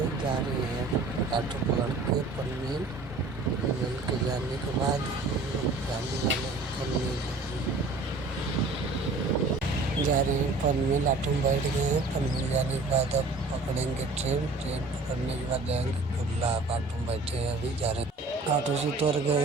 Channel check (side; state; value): left; quieter; 3.4 dB